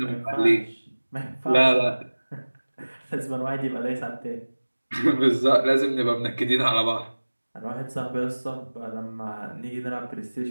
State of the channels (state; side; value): inverted; both; correlation -1.00